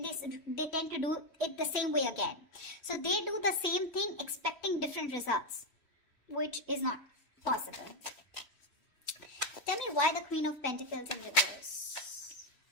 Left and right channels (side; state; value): right; late; 3.1 ms